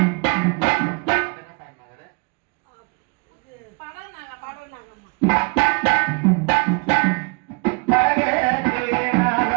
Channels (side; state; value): left; quieter; 32.7 dB